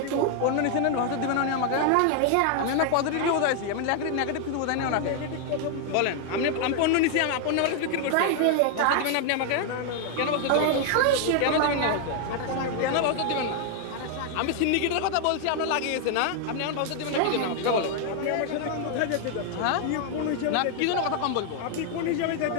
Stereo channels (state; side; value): different; both; correlation 0.00